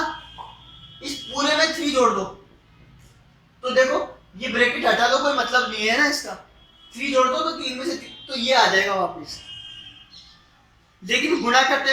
इस पूरे में 3 जोड़ दो तो देखो ये ब्रैकेट हटा दो, कोई मतलब नहीं है ना इसका। 3 जोड़ दो तो 3 में से 3 तो ये आ जाएगा वापस। लेकिन गुणा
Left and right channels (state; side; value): identical; both; correlation 1.00